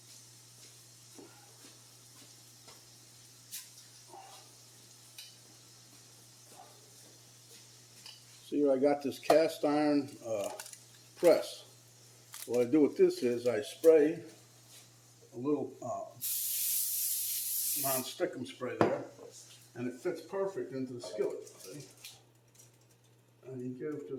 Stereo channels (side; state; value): both; identical; correlation 1.00